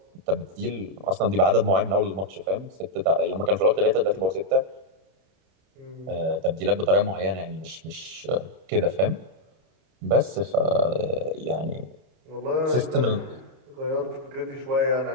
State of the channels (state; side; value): late; left; 32 ms